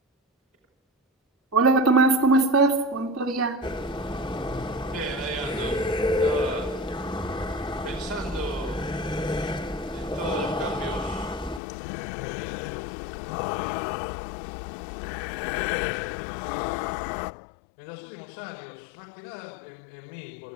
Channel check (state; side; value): drops out; right; at 11.6 s